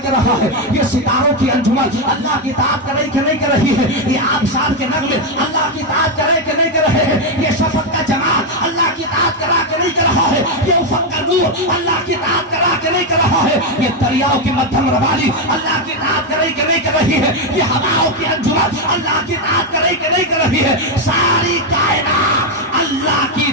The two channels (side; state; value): both; normal; correlation 0.05